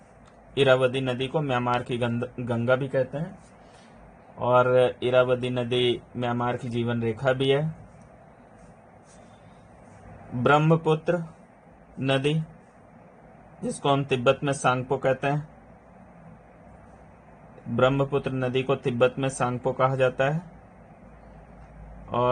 इरावदी नदी को म्यांमार की गंगा भी कहते हैं और इरावदी नदी म्यांमार की जीवन रेखा भी है। ब्रह्मपुत्र नदी, जिसको हम तिब्बत में सांगपो कहते हैं, ब्रह्मपुत्र नदी को तिब्बत में सांगपो कहा जाता है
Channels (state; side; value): identical; both; correlation 1.00